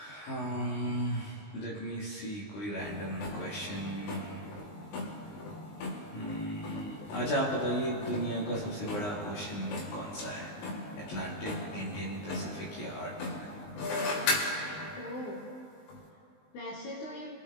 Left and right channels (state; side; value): late; right; 19 ms